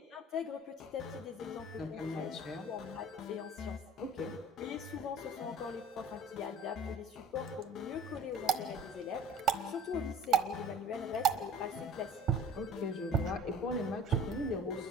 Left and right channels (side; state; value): both; normal; correlation 0.46